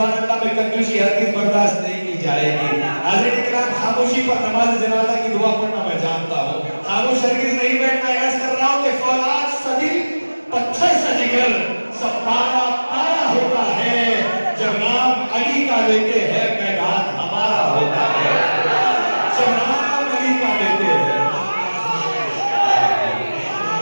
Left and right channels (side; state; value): both; inverted; correlation -1.00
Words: اللہ میں کنجوسی ہرگز برداشت نہیں کی جائے گی۔ حضرت کرام خاموشی پر نماز جنازہ کی دعا پڑھنا میں جانتا ہوں، خاموش ہرگز نہیں بیٹھنا۔ عرض کر رہا ہوں کہ فولاد صدی پتھر سے جگر سب پارا پارا ہوتا ہے، جب نام علی کا لیتے ہیں میدان ہمارا ہوتا ہے، جب نام علی کا لیتے ہیں۔